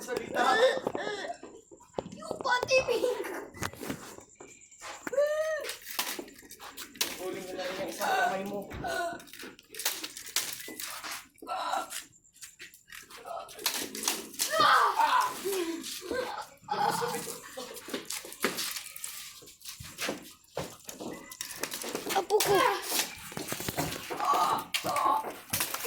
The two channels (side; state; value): both; identical; correlation 1.00